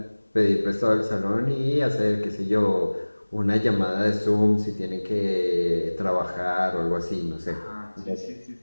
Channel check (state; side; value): inverted; both; correlation -1.00